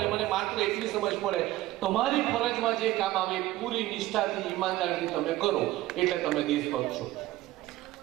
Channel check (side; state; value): left; quieter; 16.5 dB